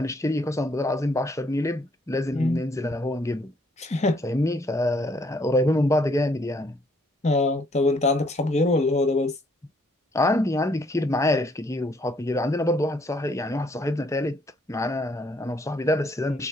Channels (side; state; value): both; normal; correlation 0.66